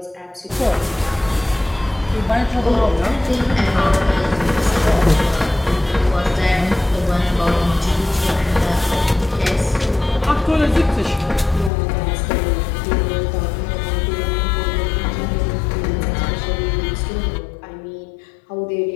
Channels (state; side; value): drops out; right; at 11.7 s